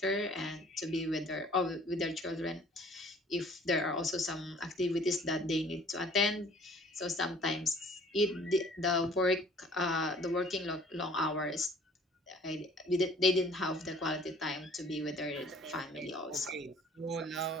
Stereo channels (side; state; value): both; normal; correlation 0.54